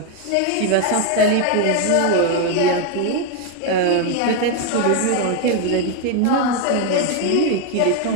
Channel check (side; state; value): both; different; correlation 0.01